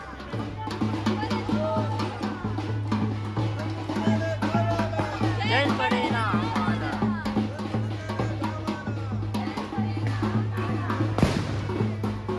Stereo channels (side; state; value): both; identical; correlation 1.00